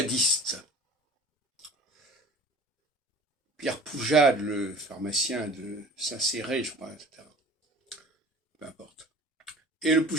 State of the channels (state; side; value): normal; both; correlation 0.43